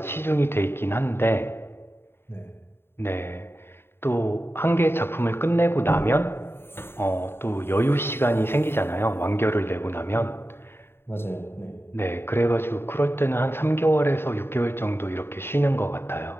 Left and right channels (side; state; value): right; late; 0.11 ms